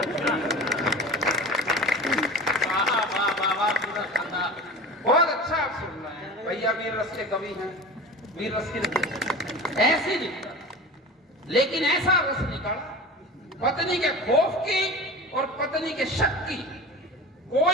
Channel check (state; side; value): normal; both; correlation 0.34